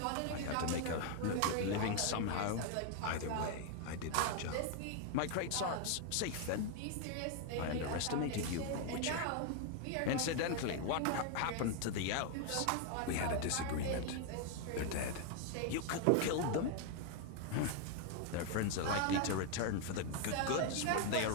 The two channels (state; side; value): different; both; correlation 0.00